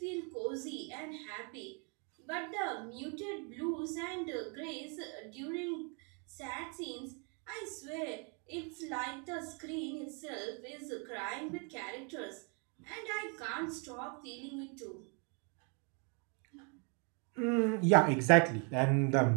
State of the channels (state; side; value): quieter; left; 36.1 dB